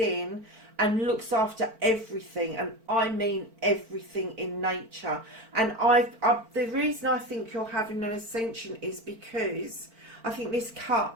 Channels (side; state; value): left; late; 4.4 ms